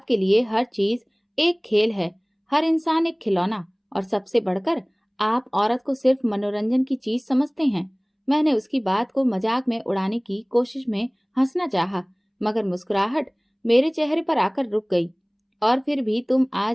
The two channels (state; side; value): identical; both; correlation 1.00